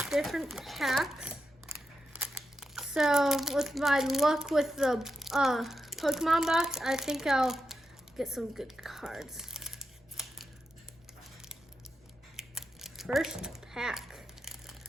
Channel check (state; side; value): normal; both; correlation 0.87